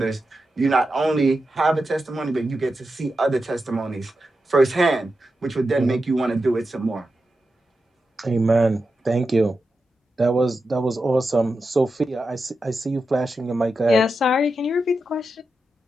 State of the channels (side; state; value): both; normal; correlation 0.89